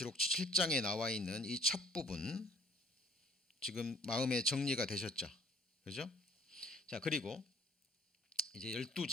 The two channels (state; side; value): normal; both; correlation 0.55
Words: 7장에 나와 있는 이 첫 부분, 지금 마음에 정리가 되셨죠? 그죠? 자, 그리고 이제